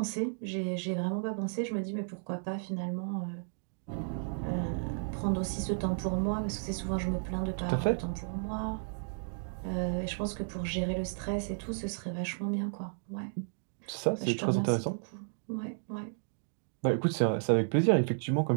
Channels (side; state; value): left; silent; digital silence